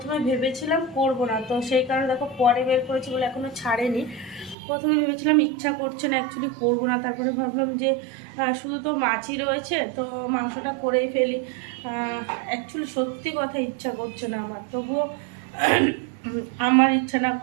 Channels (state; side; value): drops out; left; at 4.5 s